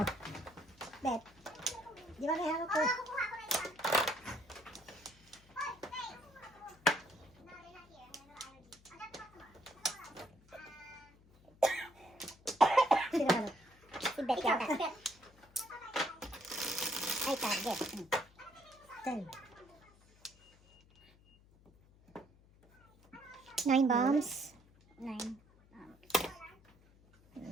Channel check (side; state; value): left; noise; hum, 27 dB below the sound